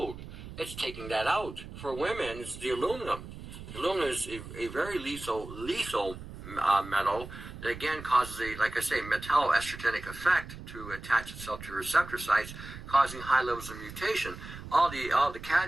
It's taking that out. For women, it's the aluminum. The aluminum is a very lethal metal that, again, causes like I say, metalloestrogenic effect to attach itself to receptor sites, causing high levels of mutation. All the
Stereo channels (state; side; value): noise; right; rumble, 12 dB below the sound